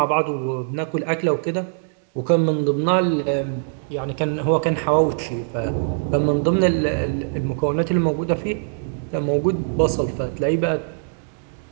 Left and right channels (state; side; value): silent; left; digital silence